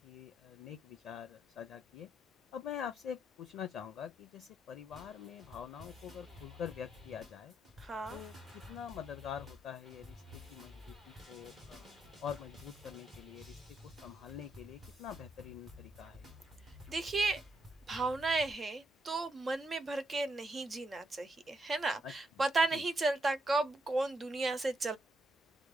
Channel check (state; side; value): normal; both; correlation 0.80